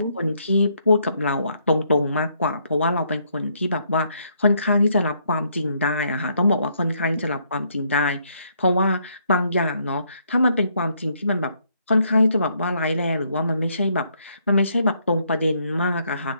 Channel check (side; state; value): both; inverted; correlation -0.72